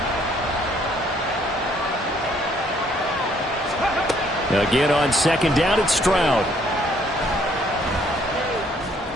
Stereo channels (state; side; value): normal; both; correlation 0.65